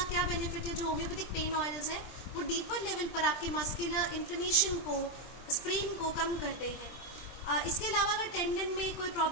क्या बेनिफिट है? जो होम्योपैथिक पेन ऑयल्स हैं वो डीपर लेवल पर आपके मस्कुलर इन्फ्लेमेशन को, स्प्रेन को कम करते हैं. इसके अलावा अगर टेंडन में कोई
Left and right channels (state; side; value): late; right; 23 ms